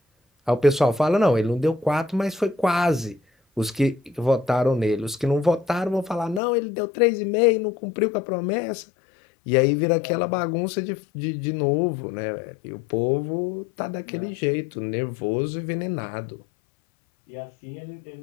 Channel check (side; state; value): right; drops out; at 6.4 s